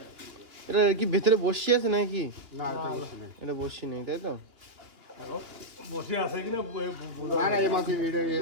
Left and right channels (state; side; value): late; left; 2.8 ms